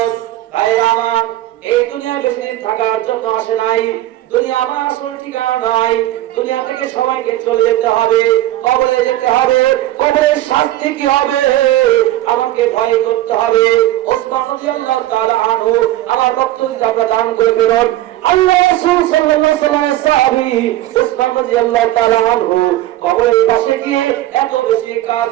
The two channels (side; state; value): left; quieter; 15.1 dB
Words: ভাইরা আমার এই দুনিয়া বেশি দিন থাকার জন্য আসে নাই। দুনিয়া আমার আসল ঠিকানা নয়। দুনিয়া থেকে সবাইকে চলে যেতে হবে, কবরে যেতে হবে। কবরের শাস্তি কি হবে আমাকে ভয় করতে হবে। ওসমান রাদিয়াল্লাহু তাআলা আনহু আমার বক্তব্য আপনারা দান করে বেরোন। আল্লাহ রাসূল সাল্লাল্লাহু আলাইহি ওয়াসাল্লামের সাহাবী ওসমান রাদিয়াল্লাহু তাআলা আনহু কবরের পাশে গিয়ে এত বেশি